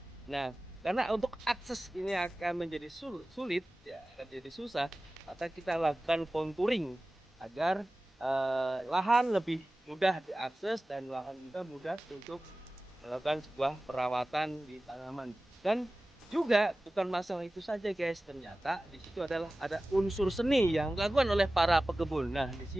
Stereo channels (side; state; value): both; normal; correlation 0.96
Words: Nah, karena untuk akses ini akan menjadi sulit ya, akan jadi susah, maka kita lakukan contouring agar lahan lebih mudah diakses dan lahan juga mudah untuk melakukan sebuah perawatan di tanaman. Dan juga bukan masalah itu saja guys, ternyata di situ adalah ada unsur seni yang dilakukan oleh para pekebun. Nah, di